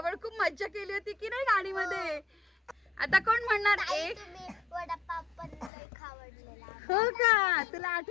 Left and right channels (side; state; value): right; drops out; at 5.7 s